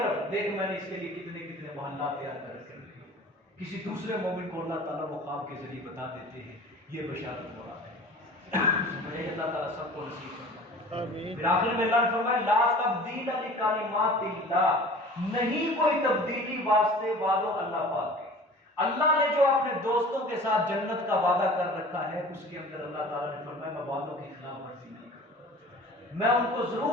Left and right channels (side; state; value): both; normal; correlation 0.43